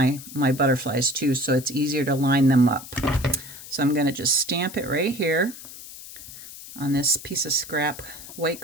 butterflies too, so it's easier to line them up. So I'm going to just stamp it right here on this piece of scrap white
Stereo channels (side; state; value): left; noise; hiss, 15 dB below the sound